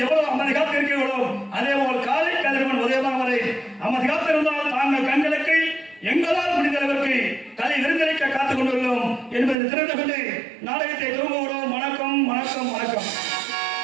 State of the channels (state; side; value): drops out; left; at 9.6 s